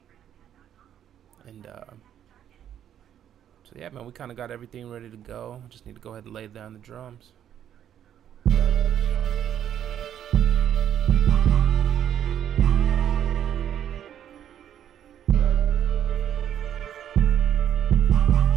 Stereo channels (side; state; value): left; quieter; 10.1 dB